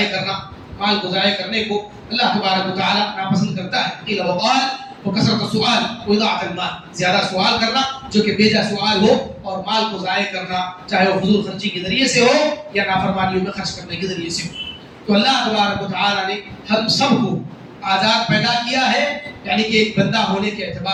کرنے کو اللہ تبارک و تعالیٰ ناپسند کرتا ہے. قیل و قال وکثرت السؤال واضاعة المال، زیادہ سوال کرنا جو کہ بیجا سوال ہو، اور مال کو ضائع کرنا چاہے وہ فضول خرچی کے ذریعے سے ہو یا نافرمانیوں میں خرچ کرنے کے ذریعے سے ہو۔ تو اللہ تبارک و تعالیٰ نے ہم سب کو آزاد پیدا کیا ہے، یعنی کہ ایک بندہ ہونے کے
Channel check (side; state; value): both; identical; correlation 1.00